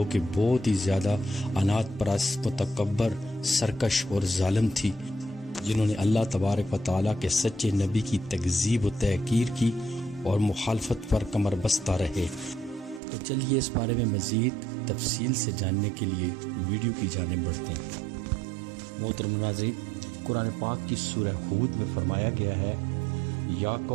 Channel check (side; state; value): left; drops out; at 13.0 s